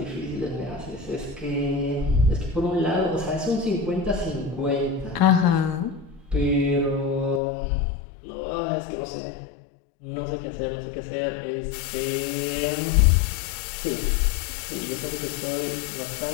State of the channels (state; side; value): drops out; right; at 7.4 s